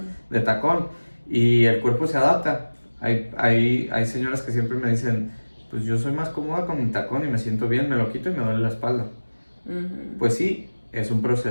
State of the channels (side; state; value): both; inverted; correlation -1.00